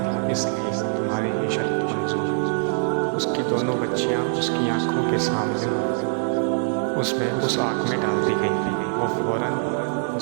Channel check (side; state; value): left; silent; 58 dB below the other